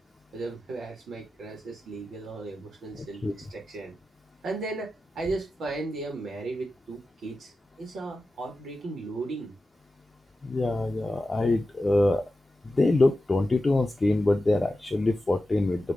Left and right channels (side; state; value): both; normal; correlation 0.92